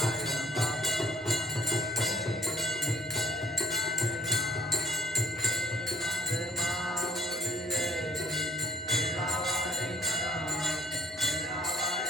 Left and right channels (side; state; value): both; normal; correlation 0.57